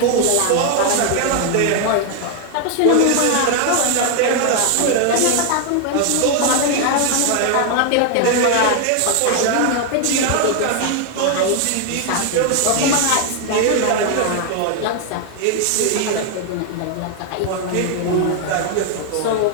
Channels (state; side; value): different; both; correlation 0.00